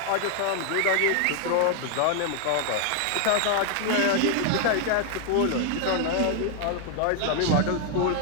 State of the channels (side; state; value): both; different; correlation 0.00